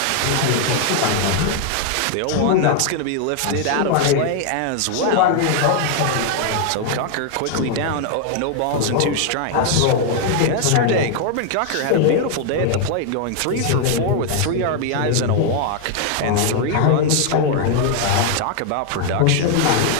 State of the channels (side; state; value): both; different; correlation 0.00